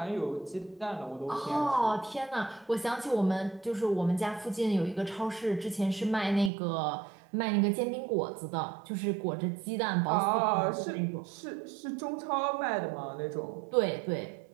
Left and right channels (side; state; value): left; drops out; at 6.5 s